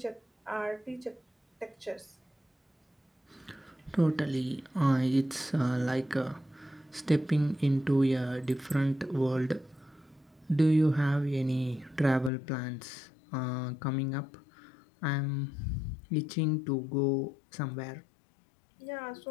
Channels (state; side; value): drops out; right; at 12.3 s